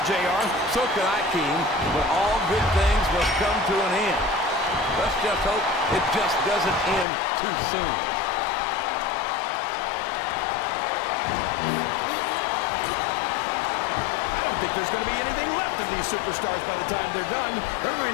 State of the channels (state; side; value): drops out; right; at 7.1 s